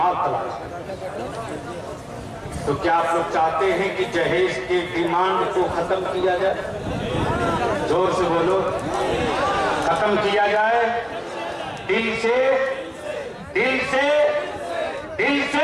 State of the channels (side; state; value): both; identical; correlation 1.00